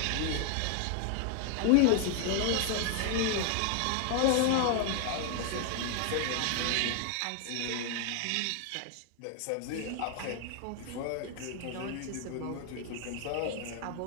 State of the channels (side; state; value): both; different; correlation 0.00